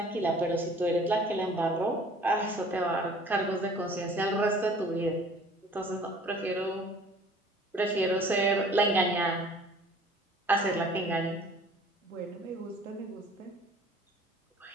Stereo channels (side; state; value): both; normal; correlation 0.51